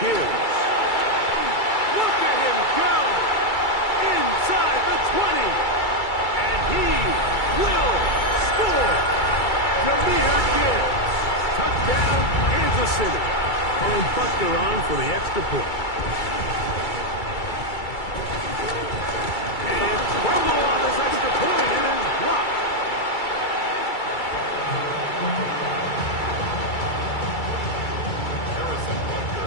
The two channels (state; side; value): late; right; 2.3 ms